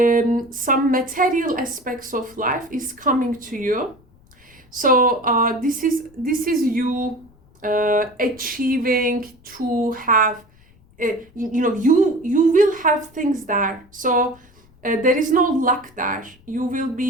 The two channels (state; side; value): noise; left; rumble, 28 dB below the sound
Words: aspects of life is coming to you. So this is you achieving to have, you will have things there. So there is no luck there. You will